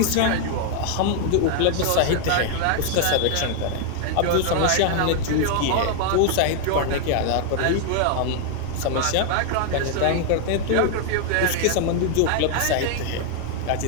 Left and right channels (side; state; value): both; different; correlation 0.00